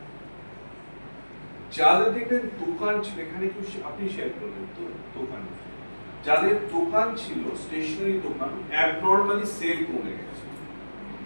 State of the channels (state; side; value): inverted; both; correlation -1.00